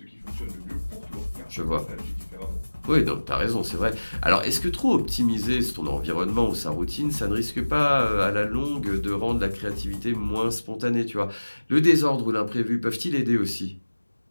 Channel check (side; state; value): both; inverted; correlation -1.00